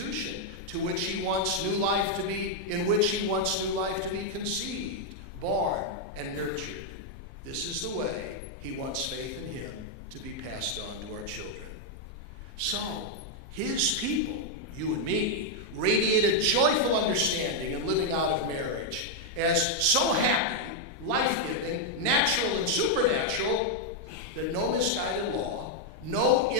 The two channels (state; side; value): late; right; 1.2 ms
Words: in which he wants new life to be conceived, born, and nurtured. This is the way he wants faith in him to be passed on to our children. So, his people, you and me, radiate a joyful understanding and living out of marriage as so happy, life-giving, natural, and supernatural that no misguided law, no